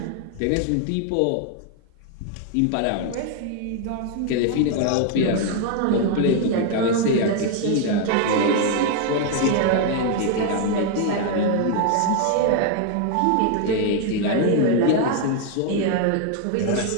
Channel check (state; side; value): different; both; correlation 0.00